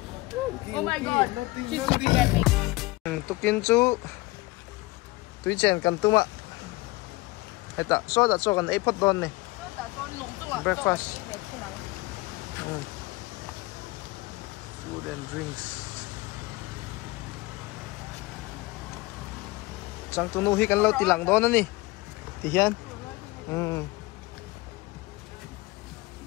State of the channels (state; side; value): quieter; right; 21.7 dB